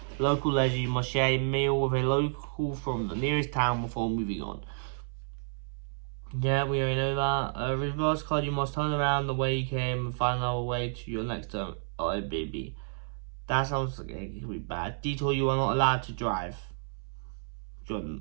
Local leisure, you must share a meal with a local from the nearest town before moving on. Yeah, we already know that. Reverse card, you must turn around the way you came and find another way to your next term. Oh, baby. That sounds like it could be bad. Detour, you are not allowed to drive.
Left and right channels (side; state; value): left; silent; 58 dB below the other